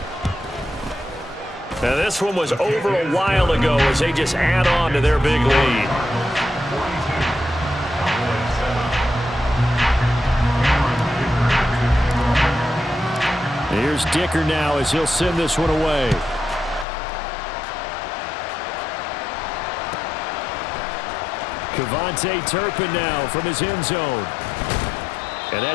Now this one was over a while ago as they just add on to their big lead. Here's Dicker now as he'll send this one away. Cavante Turpin now from his end zone. And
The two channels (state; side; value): drops out; right; at 16.9 s